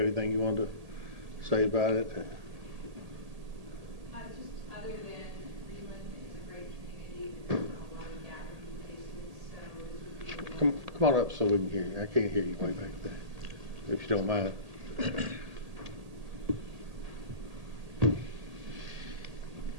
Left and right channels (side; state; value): left; late; 1.8 ms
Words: anything you wanted to say about it? Just other than Greenland is a great community, there's not a lot of gathering places, so Come on up so we can hear you. I can't hear you way back there, if you don't mind.